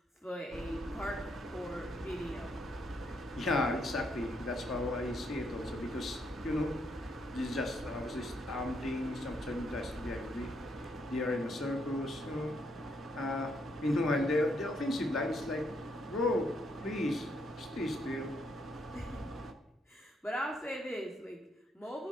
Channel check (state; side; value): normal; both; correlation 0.74